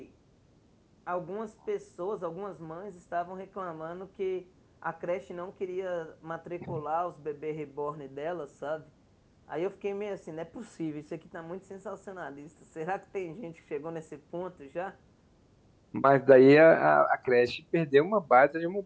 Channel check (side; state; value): both; identical; correlation 1.00